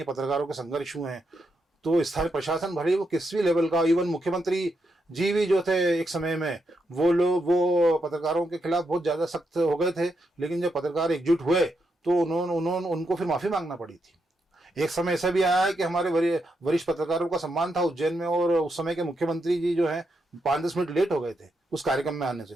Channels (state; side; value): normal; both; correlation 0.82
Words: पत्रकारों के संघर्ष हुए हैं, तो स्थानीय प्रशासन भले वो किस भी लेवल का, इवन मुख्यमंत्री जी भी जो थे एक समय में, वो पत्रकारों के खिलाफ बहुत ज्यादा सख्त हो गए थे। लेकिन जब पत्रकार एकजुट हुए तो उनको फिर माफी मांगना पड़ी थी। एक समय ऐसा भी आया है कि हमारे वरिष्ठ पत्रकारों का सम्मान था उज्जैन में, और उस समय के मुख्यमंत्री जी जो है 5-10 मिनट लेट हो गए थे उस कार्यक्रम में आने से,